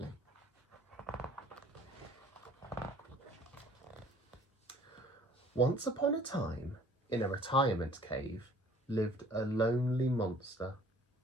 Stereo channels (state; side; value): normal; both; correlation 0.54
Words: Once upon a time, in a retirement cave, lived a lonely monster.